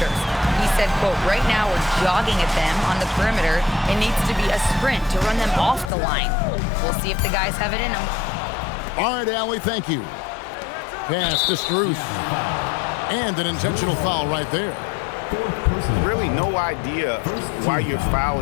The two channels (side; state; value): right; drops out; at 5.9 s